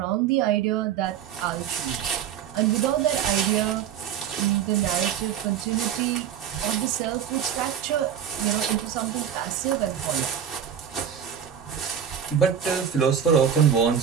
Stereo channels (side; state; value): left; quieter; 8.7 dB